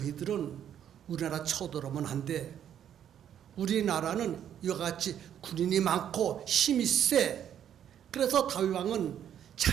우리나라 쳐들어오면 안 돼. 우리나라는 이와 같이 군인이 많고 힘이 세. 그래서 다윗 왕은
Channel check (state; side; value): quieter; left; 9.8 dB